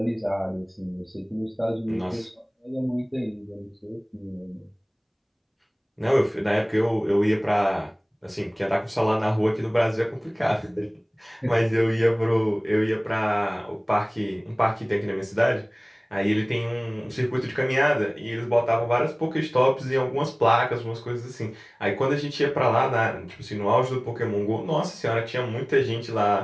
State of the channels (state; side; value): identical; both; correlation 1.00